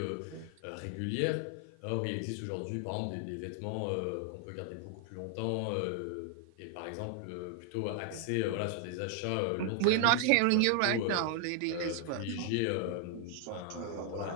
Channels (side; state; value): both; different; correlation 0.00